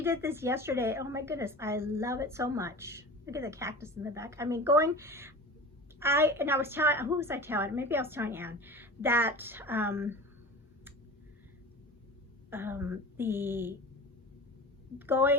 did this yesterday. Oh my goodness, I love it so much. Look at the cactus in the back. I mean, I was telling, who was I telling? Maybe I was telling Anne that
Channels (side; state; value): both; normal; correlation 0.35